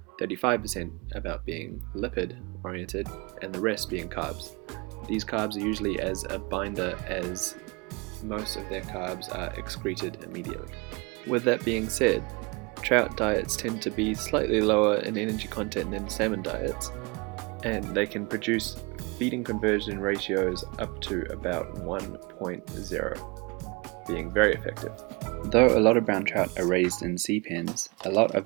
35% about being lipid oriented, and the rest being carbs. These carbs are usually as a binder, as most of their carbs are excreted immediately. With that being said, trout diets tend to be slightly lower in energy content than salmon diets, and they can produce feeding conversion ratios up to about 1.0, being very effective. Though a lot of brown trout are raised in sea pens, a lot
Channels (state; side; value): quieter; left; 28.1 dB